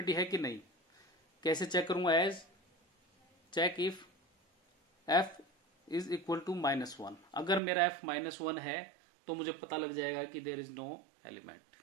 है कि नहीं। कैसे चेक करूंगा, as check if F is equal to -1। अगर मेरा एफ -1 है तो मुझे पता लग जाएगा कि देयर इज नो एलिमेंट,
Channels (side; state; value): left; drops out; at 7.6 s